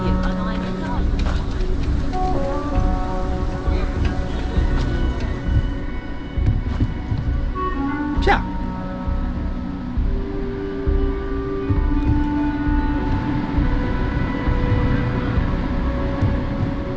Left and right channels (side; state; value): both; identical; correlation 1.00